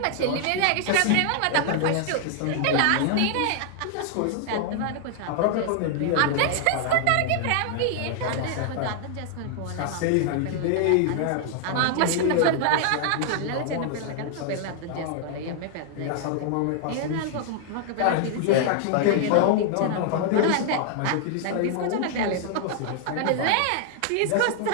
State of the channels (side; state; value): both; different; correlation 0.00